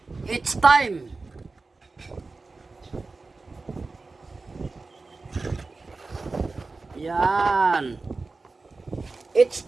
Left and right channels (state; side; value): quieter; left; 3.8 dB